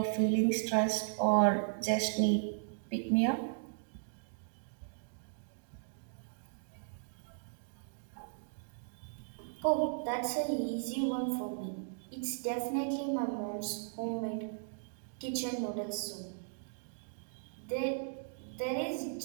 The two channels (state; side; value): silent; left; digital silence